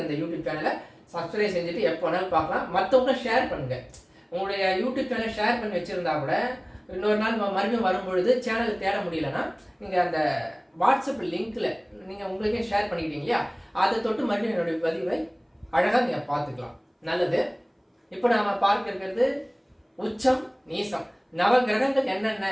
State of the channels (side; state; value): both; identical; correlation 1.00